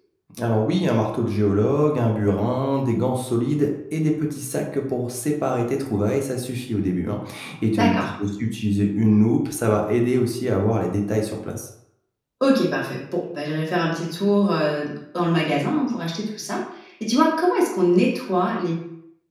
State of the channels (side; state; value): both; identical; correlation 1.00